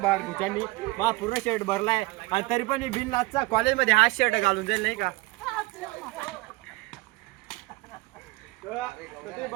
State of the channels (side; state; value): left; quieter; 22.0 dB